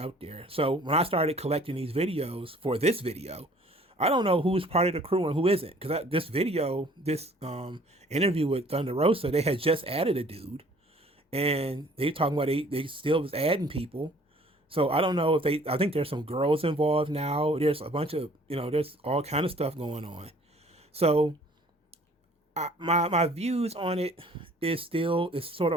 there. So when I started collecting these videos for this video, I don't know who's part of the crew and who isn't. Because this interview with Thunder Rosa, they had just added a dude, and they talking about they still was adding people. So I don't know if they. I think there's some girls involved now. There's a bunch of there's all kind of stuff going on. So my views on it is sort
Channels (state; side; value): normal; both; correlation 0.54